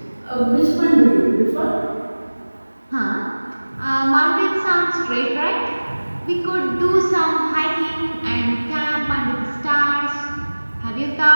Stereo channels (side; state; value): both; inverted; correlation -1.00